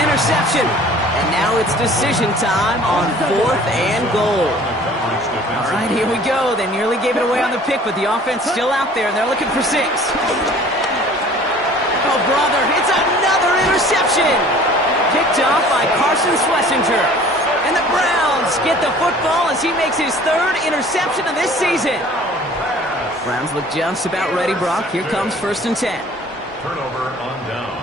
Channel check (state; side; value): normal; both; correlation 0.49